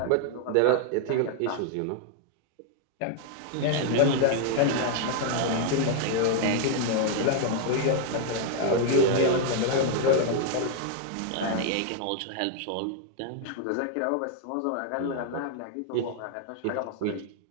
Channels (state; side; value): different; both; correlation 0.00